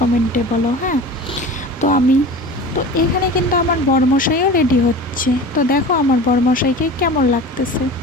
বলো। হ্যাঁ, তো এখানে কিন্তু আমার বরমশাইও রেডি হচ্ছে। তো দেখো আমার বরমশাইকে কেমন লাগতেছে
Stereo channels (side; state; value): both; normal; correlation 0.35